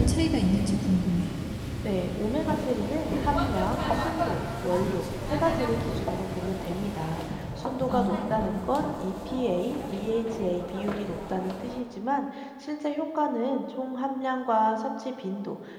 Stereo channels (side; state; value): both; identical; correlation 1.00